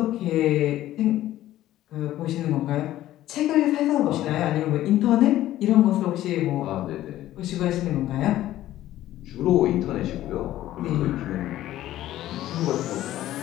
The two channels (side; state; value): right; quieter; 14.0 dB